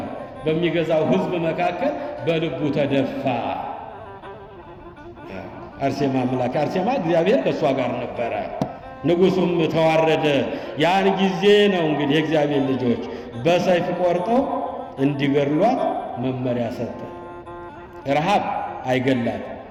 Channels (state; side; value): identical; both; correlation 1.00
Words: በሚገዛው ሕዝብ መካከል በልቡ ተደፋ። አርሴማ አምላክ አርሴማ እግዚአብሔር ከእሷ ጋር ነበረ። ንጉሡም ተዋረደ። ያን ጊዜ ነው እንግዲህ የእግዚአብሔር ልጆች በሰይፍ ቆርጠው እንዲገድሏት መመሪያ ሰጠ። ረሃብ አይገላት፣